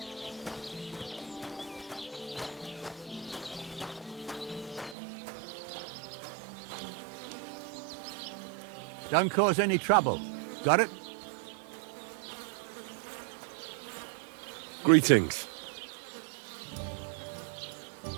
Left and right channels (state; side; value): drops out; left; at 5.0 s